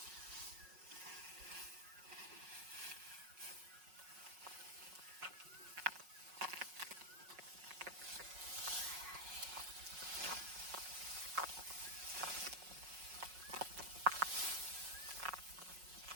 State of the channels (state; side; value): late; left; 5.4 ms